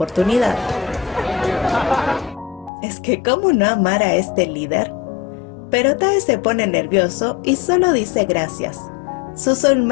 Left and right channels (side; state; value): right; drops out; at 2.7 s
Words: Es que ¿cómo no amar a este líder? Pero Tae se pone nervioso y solo dice gracias. Su